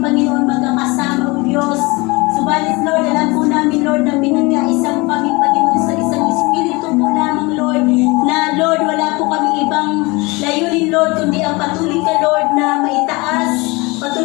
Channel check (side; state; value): right; quieter; 25.0 dB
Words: magkakasama, O Diyos. Subalit, Lord, alam po namin, Lord, na pinagkaisa mo kami, Panginoon, sa isang Espiritu po lamang, Lord, na, Lord, wala po kami ibang layunin, Lord, kundi ang patuloy ka, Lord, na maitaas,